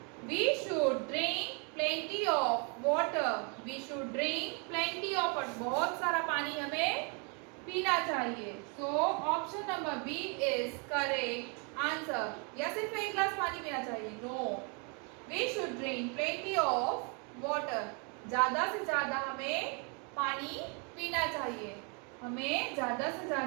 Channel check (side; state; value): left; quieter; 36.0 dB